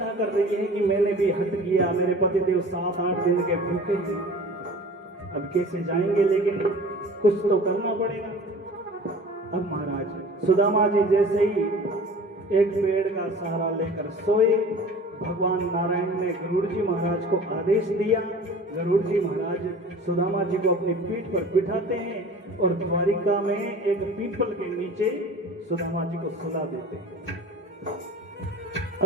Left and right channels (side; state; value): both; normal; correlation 0.43